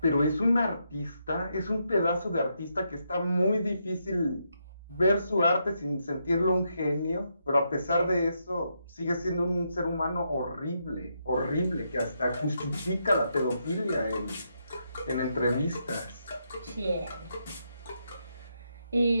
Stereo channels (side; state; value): both; inverted; correlation -0.80